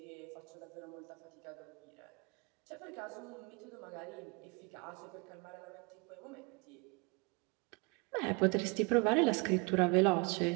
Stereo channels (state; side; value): quieter; left; 29.1 dB